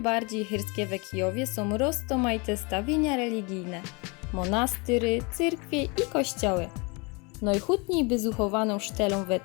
chyrskie w Kijowie są rozmaite stawienia religijne, monastyry, cyrkwie i kościoły. Najchutniej wyzuchowaną sztelą we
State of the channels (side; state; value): right; quieter; 29.5 dB